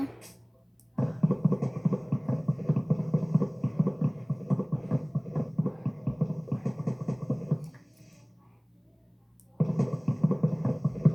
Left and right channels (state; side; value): identical; both; correlation 1.00